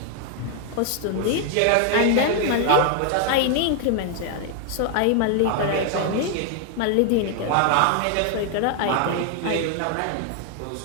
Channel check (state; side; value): different; both; correlation 0.00